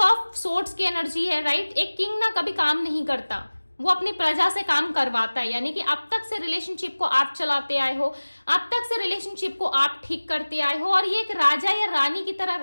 सोर्ड्स की एनर्जी है, राइट। एक किंग ना कभी काम नहीं करता, वो अपनी प्रजा से काम करवाता है, यानी कि अब तक से रिलेशनशिप को आप चलाते आए हो, अब तक से रिलेशनशिप को आप ठीक करते आए हो, और ये एक राजा या रानी की तरह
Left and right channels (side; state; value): both; inverted; correlation -1.00